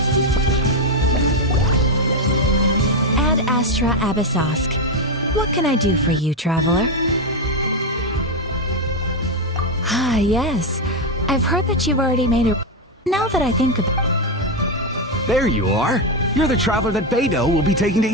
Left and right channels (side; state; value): both; normal; correlation 0.07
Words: Ad Astra Abyssosk. What can I do for you, traveler? Ah, yes. I've heard that you've already made a... Now that I think about... There you are. You're the traveler that Beidou will be taking to